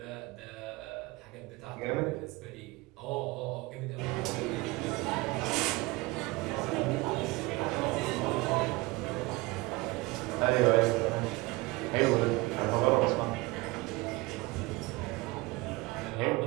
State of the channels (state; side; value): quieter; left; 22.4 dB